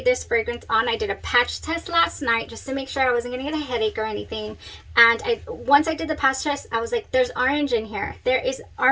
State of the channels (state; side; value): identical; both; correlation 1.00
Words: this fragrance on, I did a patch test last night just to make sure I wasn't going to get a headache or anything. And once I did the patch test, I was like, there's orange in here. There is